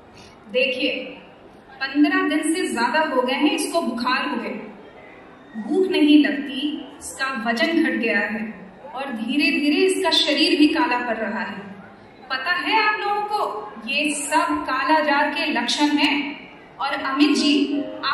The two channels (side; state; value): both; identical; correlation 1.00